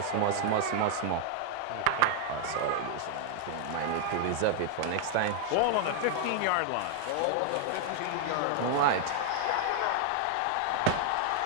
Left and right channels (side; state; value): both; different; correlation 0.00